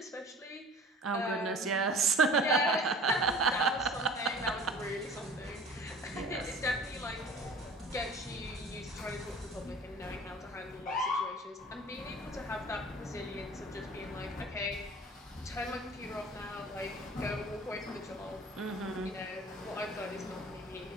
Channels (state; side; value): normal; both; correlation 0.44